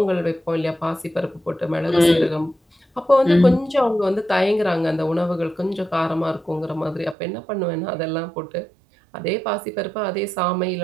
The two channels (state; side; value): drops out; left; at 7.2 s